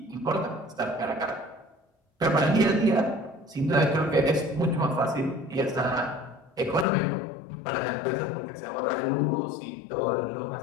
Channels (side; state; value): right; drops out; at 6.9 s